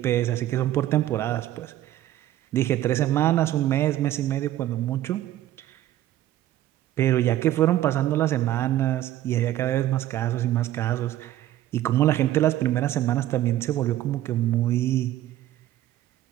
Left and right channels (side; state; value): left; quieter; 13.4 dB